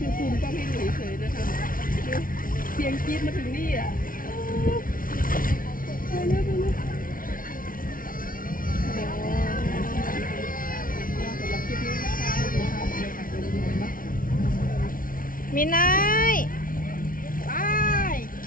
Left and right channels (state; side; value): late; right; 0.40 ms